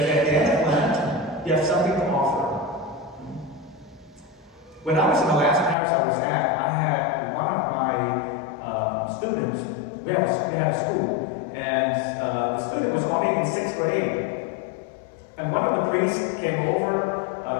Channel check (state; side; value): drops out; right; at 5.8 s